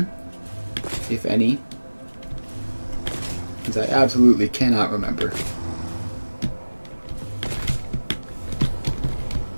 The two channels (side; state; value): both; inverted; correlation -1.00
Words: if any. Because I absolutely cannot remember.